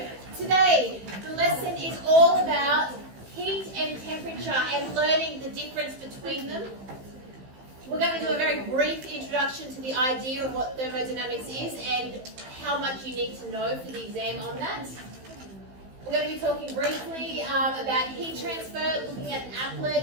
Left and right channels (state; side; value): late; left; 15 ms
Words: today the lesson is all about heat and temperature and learning the difference between them. We're going to do a very brief introduction to the idea of what thermodynamics is and how much you need to know for the exam on that. We're going to be talking briefly about heat transfer, looking at